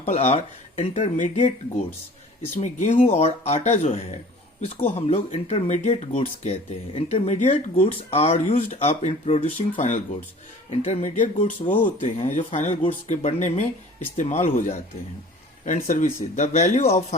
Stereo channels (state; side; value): normal; both; correlation 0.46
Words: are intermediate goods. इसमें गेहूं और आटा जो है इसको हम लोग इंटरमीडिएट गुड्स कहते हैं। Intermediate goods are used up in producing final goods. Intermediate goods वो होते हैं जो फाइनल गुड्स के बनने में इस्तेमाल हो जाते हैं। And services, the value of